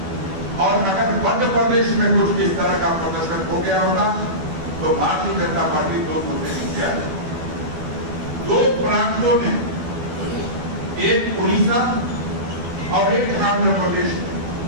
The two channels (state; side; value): late; left; 12 ms